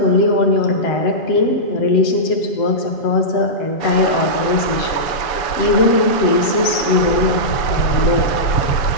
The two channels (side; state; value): right; late; 7.8 ms